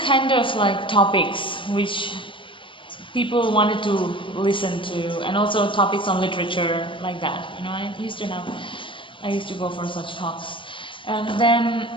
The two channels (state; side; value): late; right; 0.25 ms